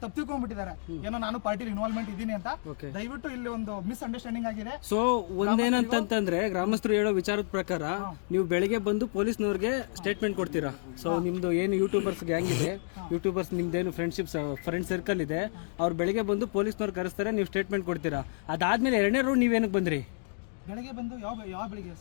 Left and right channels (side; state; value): right; silent; digital silence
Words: ತಪ್ಪಿಕೊಂಡ್ಬಿಟ್ಟಿದ್ದಾರೆ, ಏನೋ ನಾನು ಪಾರ್ಟಿಲಿ ಇನ್ವಾಲ್ವ್ಮೆಂಟ್ ಇದ್ದೀನಿ ಅಂತ. ದಯವಿಟ್ಟು ಇಲ್ಲಿ ಒಂದು ಮಿಸ್ ಅಂಡರ್ಸ್ಟ್ಯಾಂಡಿಂಗ್ ಆಗಿದೆ. ಸೊ ಒಂದೇನಂತಂದ್ರೆ ಗ್ರಾಮಸ್ಥರು ಹೇಳೋ ವಿಚಾರದ ಪ್ರಕಾರ ನೀವು ಬೆಳಿಗ್ಗೆ ಬಂದು ಪೊಲೀಸ್ನವ್ರಿಗೆ ಸ್ಟೇಟ್ಮೆಂಟ್ ಕೊಡ್ತೀರಾ. ಸೊ ನಿಮ್ದು ಏನು ಯೂಟ್ಯೂಬರ್ಸ್ ಗ್ಯಾಂಗ್ ಇದೆ, ಯೂಟ್ಯೂಬರ್ಸ್ ನಿಮ್ದೇನು ಫ್ರೆಂಡ್ ಸರ್ಕಲ್ ಇದೆ, ಅವ್ರು ಬೆಳಿಗ್ಗೆ ಬಂದು ಪೊಲೀಸ್ನವ್ರು ಕರೆಸ್ತಾರೆ, ನೀವು ಸ್ಟೇಟ್ಮೆಂಟ್ ಕೊಡ್ತೀರಾ. ಅದಾದ್ಮೇಲೆ ಎರಡನೇ ರೌಂಡ್ ನೀವೇನಕ್ಕೆ ಬಂದ್ರಿ? ಬೆಳಗ್ಗೆ ಬಂದು ಯಾವ ಬೆಳಿಗ್ಗೆ